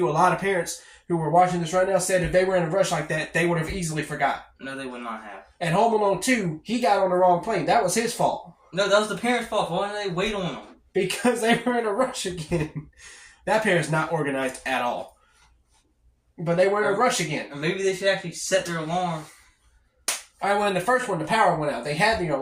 a lot of parents who were watching this right now said if they were in a rush like that, they would have easily forgot. No, they would not have. And Home Alone 2, he got on the wrong plane. That was his fault. No, that was the parents' fault. Why didn't they wait on him? Because they were in a rush again. That parent's not organized at all. But they were in a rush again. Or maybe they should actually set their alarm. Alright, well, in the first one, the power went out. They had the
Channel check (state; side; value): identical; both; correlation 1.00